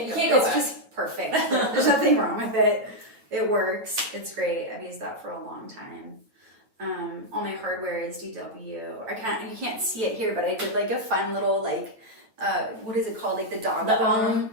go back. It's just perfect. There's nothing wrong with it. It works. It's great. I've used that for a long time. All my hardware is DW. You can't see it here, but I did like a fun little what is it called? Like the dog bone.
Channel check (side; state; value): left; late; 8.9 ms